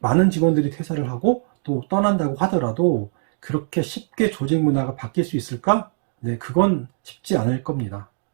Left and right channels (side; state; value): left; silent; digital silence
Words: 직원들이 퇴사를 하고 또 떠난다고 하더라도 그렇게 쉽게 조직 문화가 바뀔 수 있을까? 네, 그건 쉽지 않을 겁니다.